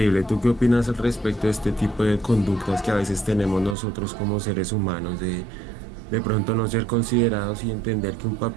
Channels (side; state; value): left; drops out; at 3.8 s